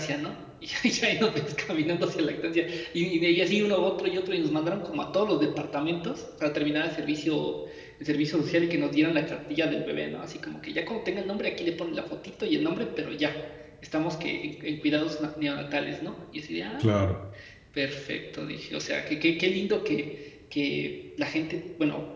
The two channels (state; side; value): identical; both; correlation 1.00